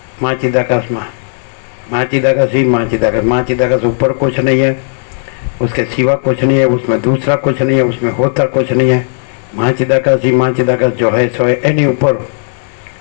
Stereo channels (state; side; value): silent; right; digital silence